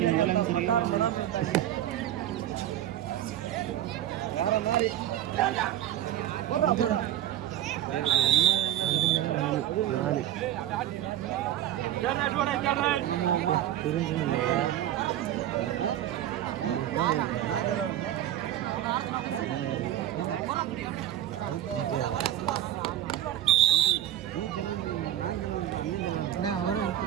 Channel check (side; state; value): left; quieter; 12.3 dB